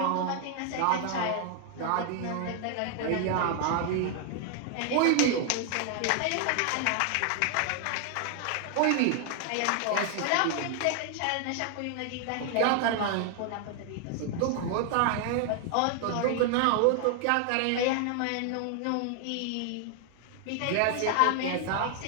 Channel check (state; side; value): different; both; correlation 0.00